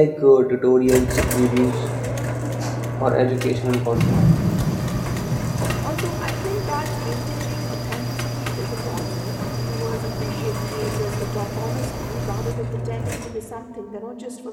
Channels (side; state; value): both; identical; correlation 1.00